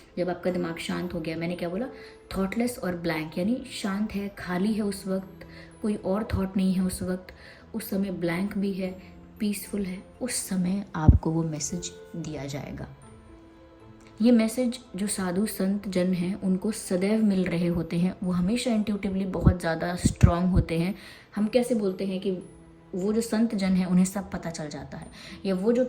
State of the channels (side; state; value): both; identical; correlation 1.00